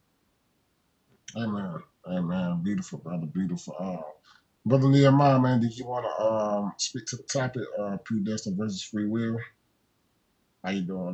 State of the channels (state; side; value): identical; both; correlation 1.00